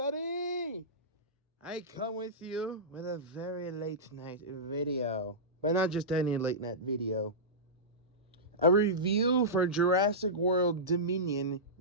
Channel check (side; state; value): both; normal; correlation -0.15